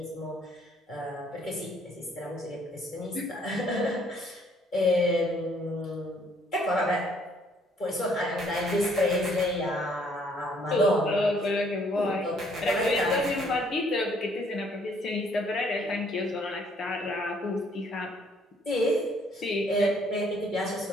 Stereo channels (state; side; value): normal; both; correlation 0.64